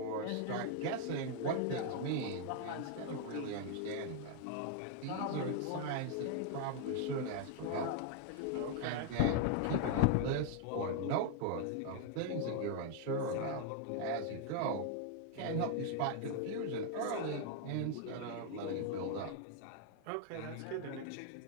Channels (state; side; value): different; both; correlation 0.00